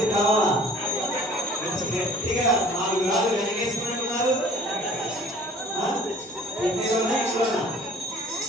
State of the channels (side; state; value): both; normal; correlation 0.50